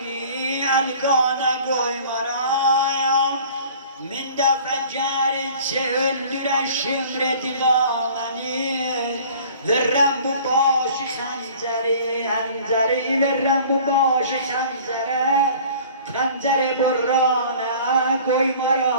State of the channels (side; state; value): both; inverted; correlation -0.47